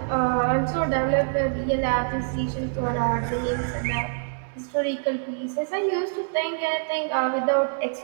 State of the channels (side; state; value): left; silent; digital silence